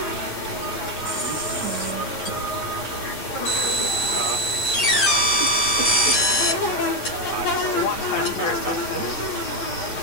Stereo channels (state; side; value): late; right; 8.3 ms